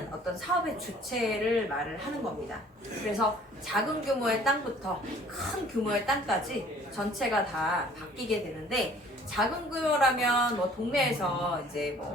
어떤 사업의 주체를 말을 하는 겁니다. 그래서 작은 규모의 땅부터 큰 규모의 땅까지 전체가 다 바뀌게 되는데 작은 규모라면 뭐 동네에서 이제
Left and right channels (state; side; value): normal; both; correlation 0.54